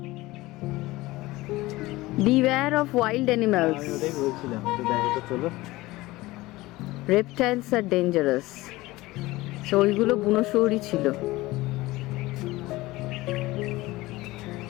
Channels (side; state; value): right; quieter; 19.4 dB